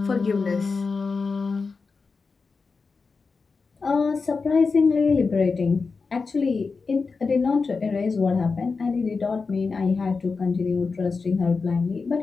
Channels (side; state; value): right; quieter; 4.6 dB